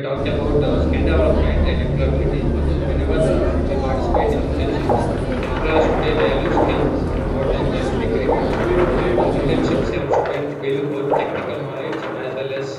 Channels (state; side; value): identical; both; correlation 1.00